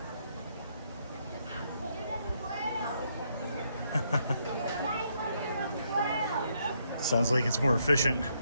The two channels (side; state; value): both; inverted; correlation -0.74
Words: Sounds like it's more efficient.